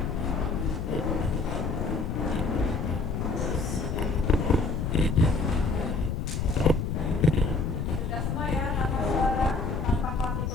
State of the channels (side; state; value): left; noise; rumble, 2 dB below the sound